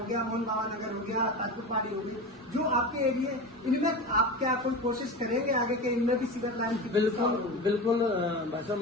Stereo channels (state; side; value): normal; both; correlation 0.27